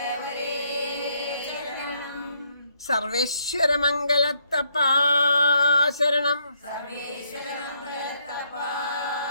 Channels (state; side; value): inverted; both; correlation -0.72